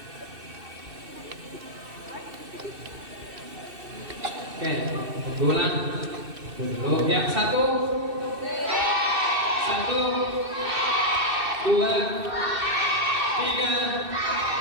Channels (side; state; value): left; late; 2.6 ms